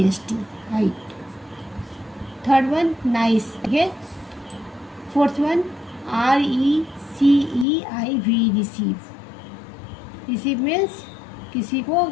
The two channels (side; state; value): right; drops out; at 7.7 s